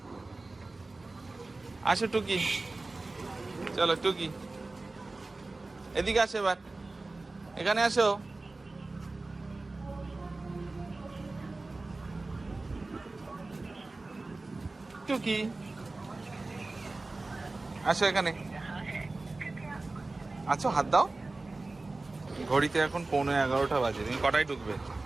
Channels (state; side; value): quieter; left; 3.3 dB